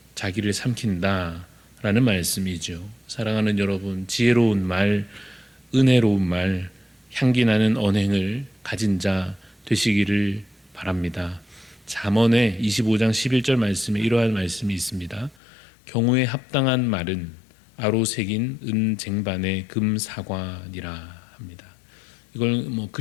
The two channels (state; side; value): drops out; right; at 15.4 s